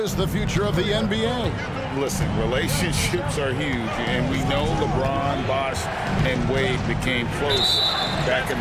the future of the NBA? Listen, relationships are huge, and we know LeBron, Bosh, and Wade became close back in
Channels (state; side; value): identical; both; correlation 1.00